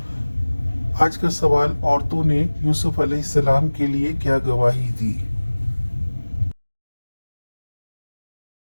آج کا سوال، عورتوں نے یوسف علیہ السلام کے لیے کیا گواہی دی؟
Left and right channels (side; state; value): both; inverted; correlation -1.00